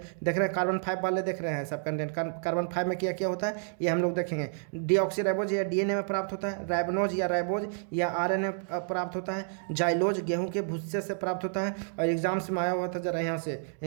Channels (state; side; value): silent; left; 58 dB below the other